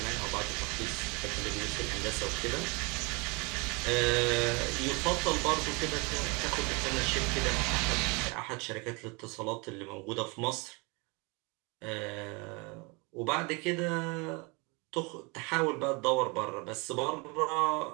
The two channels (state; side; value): quieter; left; 29.3 dB